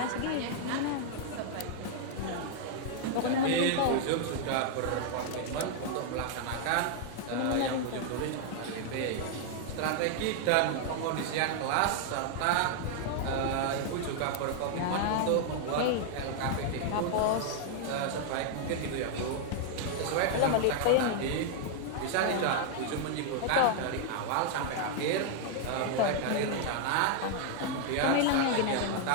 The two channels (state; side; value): different; both; correlation 0.00